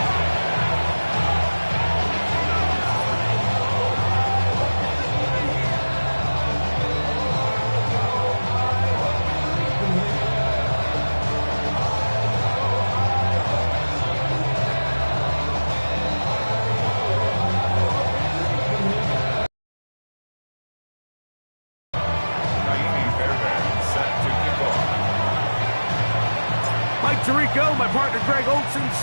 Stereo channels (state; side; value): inverted; both; correlation -1.00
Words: Tirico, my partner Greg Olson,